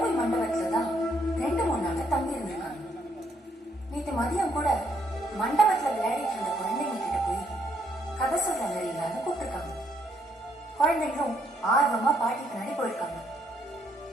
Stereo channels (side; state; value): both; normal; correlation 0.72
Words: மண்டபத்துல தான் 2-3 நாள் தங்கி இருந்திருக்காங்க. நேற்று மதியம் கூட மண்டபத்துல விளையாடிட்டு இருந்த குழந்தைங்க கிட்ட போய் கதை சொல்ற மாதிரி இல்லாம கூப்பிட்டுருக்காங்க. குழந்தைங்களும் ஆர்வமா பாட்டி பின்னாடி போயிருக்காங்க.